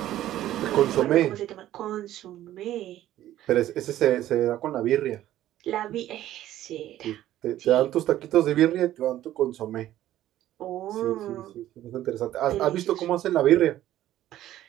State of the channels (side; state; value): left; quieter; 13.4 dB